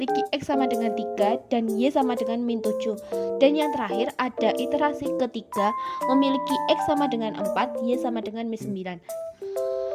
X sama dengan 3 dan Y sama dengan min 7. Dan yang terakhir ada iterasi ketiga memiliki X sama dengan 4, Y sama dengan min 9.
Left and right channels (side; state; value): both; identical; correlation 1.00